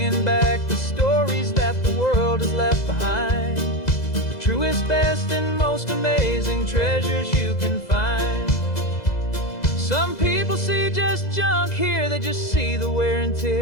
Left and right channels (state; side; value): late; right; 2.0 ms